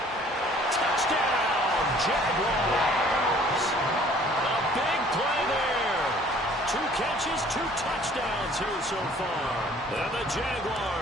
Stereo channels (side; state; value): both; normal; correlation 0.55